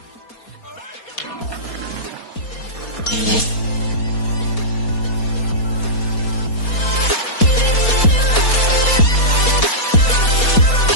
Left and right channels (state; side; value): late; right; 4.2 ms